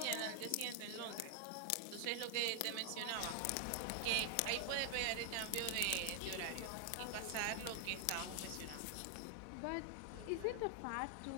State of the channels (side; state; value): both; different; correlation 0.00